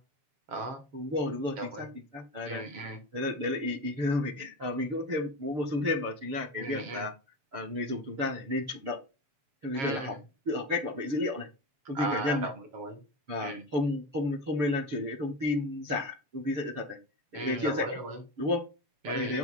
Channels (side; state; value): left; late; 6.9 ms